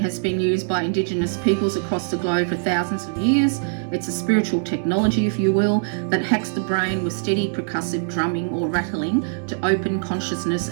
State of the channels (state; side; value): silent; left; digital silence